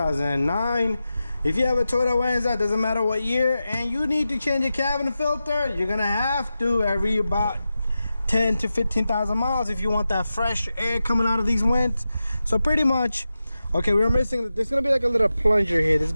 If you have a Toyota Venza, doesn't matter what year, and you need to change your cabin filter, you're gonna have to every about 10 to 15,000 miles if you want that fresh air coming out of these vents. So pretty much, okay, we're missing, there's gonna be like a little plunger here. This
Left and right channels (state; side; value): inverted; both; correlation -0.92